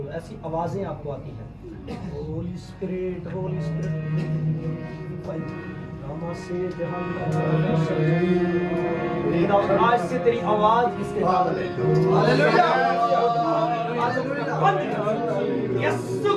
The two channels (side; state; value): both; identical; correlation 1.00